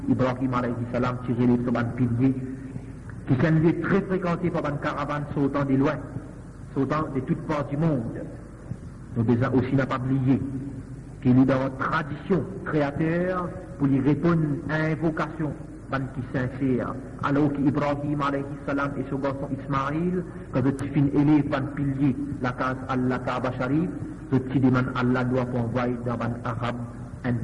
Ibrahim alayhi salam qui relève sur un pilier, qui s'est un lieu très fréquenté par une caravane sautant de loin, sautant de toutes parts du monde. Nous déjà aussi n'a pas oublié qu'il est dans la tradition créateur pour lui répondre à invocation qui sincère. Alors qu'Ibrahim alayhi salam et son garçon Ismaïl, quand je suis élève par pilier la case Allah Kaaba Sharif, je suis demande Allah doit envoyer dans un arabe un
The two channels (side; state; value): both; identical; correlation 1.00